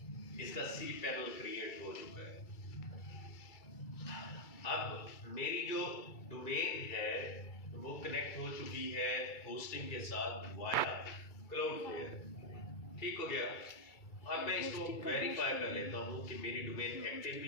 इसका cPanel क्रिएट हो चुका है। अब मेरी जो डोमेन है वो कनेक्ट हो चुकी है होस्टिंग के साथ वाया क्लाउडफ्लेयर, ठीक हो गया। अब मैं इसको वेरीफाई कर लेता हूँ कि मेरी डोमेन एक्टिव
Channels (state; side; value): late; right; 2.3 ms